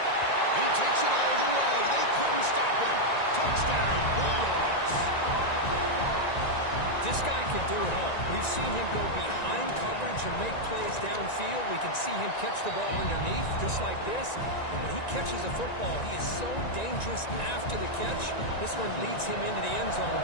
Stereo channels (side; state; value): right; late; 1.9 ms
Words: He takes it all the way. They couldn't stop him. Touchdown, Bulldogs. This guy can do it all. We've seen him go behind coverage and make plays downfield. We can see him catch the ball underneath, just like this. And when he catches a football, he is so dangerous after the catch. This one leads him into the end zone